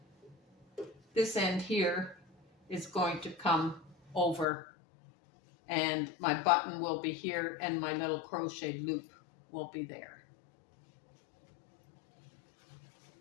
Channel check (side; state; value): right; drops out; at 4.5 s